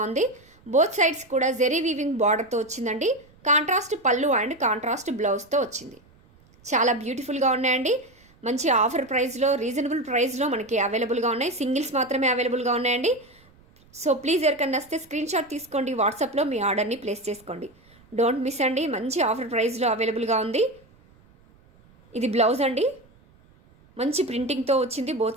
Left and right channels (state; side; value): noise; right; rumble, 29 dB below the sound